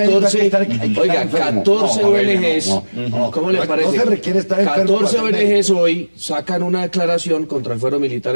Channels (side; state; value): both; inverted; correlation -1.00